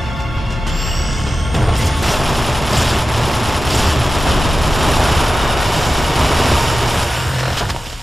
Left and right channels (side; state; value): both; normal; correlation 0.94